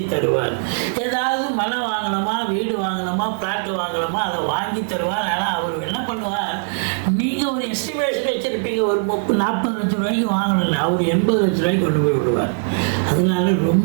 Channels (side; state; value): left; silent; 65 dB below the other